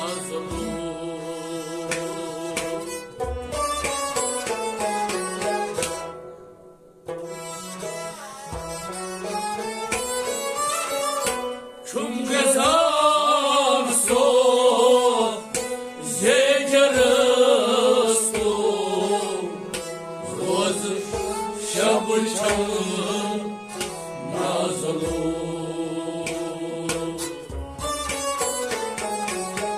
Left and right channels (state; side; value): identical; both; correlation 1.00